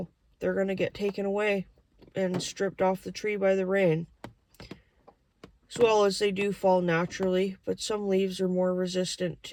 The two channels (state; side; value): identical; both; correlation 1.00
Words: they're going to get taken away and stripped off the tree by the rain. As well as they do fall naturally, but some leaves are more resistant